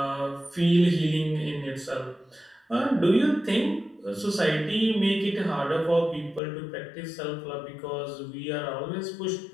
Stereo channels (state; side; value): drops out; right; at 6.4 s